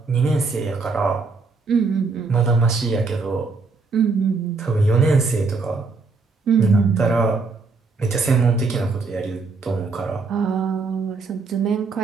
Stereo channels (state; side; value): quieter; left; 4.3 dB